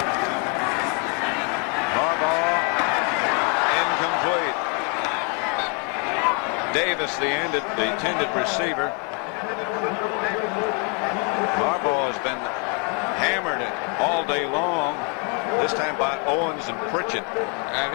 Harbaugh incomplete. Davis, the intended receiver. Harbaugh has been hammered all day long, this time by Owens and Pritchett. And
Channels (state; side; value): quieter; right; 34.4 dB